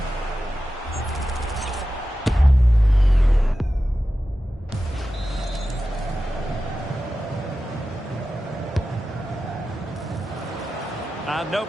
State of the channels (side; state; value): both; normal; correlation 0.93